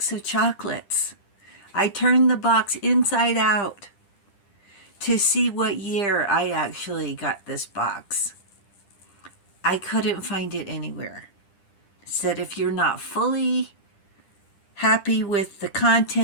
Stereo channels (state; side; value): late; right; 10 ms